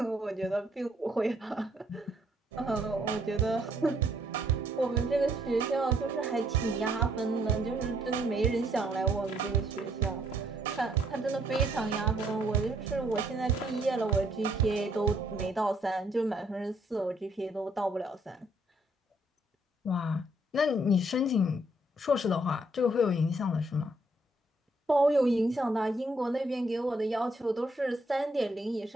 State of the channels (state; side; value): normal; both; correlation 0.68